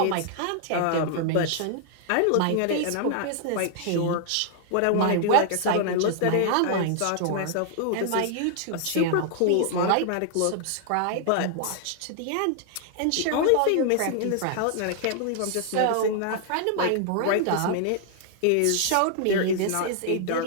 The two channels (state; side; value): different; both; correlation 0.00